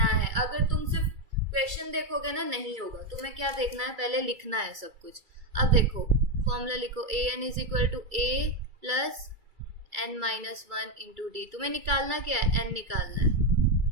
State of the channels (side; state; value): left; late; 2.3 ms